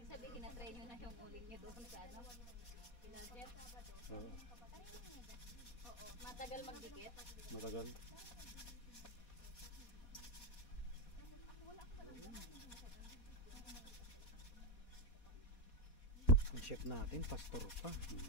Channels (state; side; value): late; right; 4.2 ms